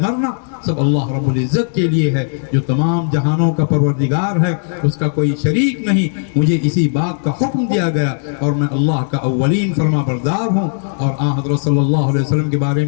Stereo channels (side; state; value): right; silent; digital silence